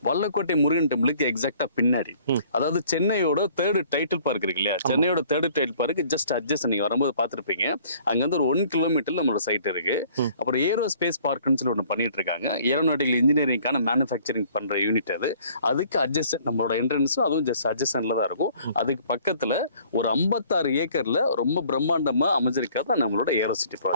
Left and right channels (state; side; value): inverted; both; correlation -0.56